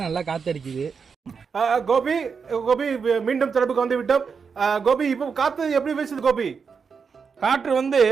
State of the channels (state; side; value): quieter; left; 5.8 dB